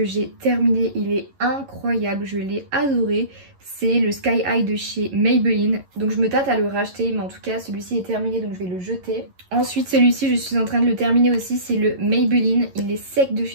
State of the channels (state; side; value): late; left; 11 ms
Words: j'ai terminé. Il est incroyable, je l'ai adoré. C'est le Sky High de chez Maybelline. Donc je me tâte à le racheter, mais en tout cas, celui-ci est terminé, donc je vais le jeter. Ensuite, celui-ci, je suis en train de le terminer aussi. C'est le Maybelline. Il est sec de